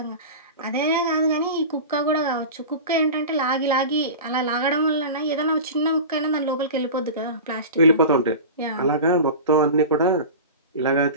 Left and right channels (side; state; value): both; inverted; correlation -0.31